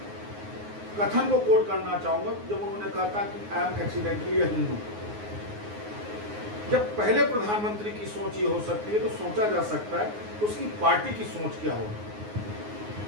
कथन को कोट करना चाहूंगा जब उन्होंने कहा था कि आई एम एक्सीडेंटली अ हिंदू। जब पहले प्रधानमंत्री की सोच ये हो सकती है तो सोचा जा सकता है तो उसकी पार्टी की सोच क्या होगी।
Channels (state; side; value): late; left; 9.5 ms